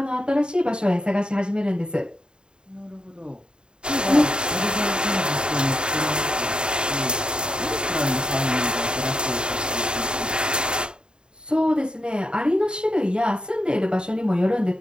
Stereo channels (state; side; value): late; left; 0.050 ms